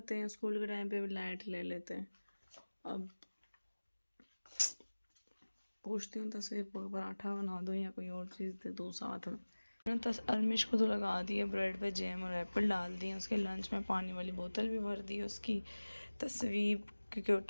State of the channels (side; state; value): both; inverted; correlation -1.00